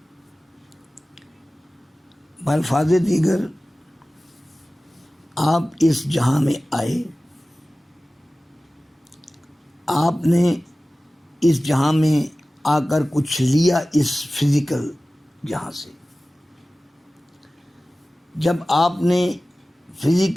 بالفاظ دیگر، آپ اس جہاں میں آئے، آپ نے اس جہاں میں آ کر کچھ لیا اس فزیکل جہاں سے۔ جب آپ نے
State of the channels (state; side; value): normal; both; correlation 0.97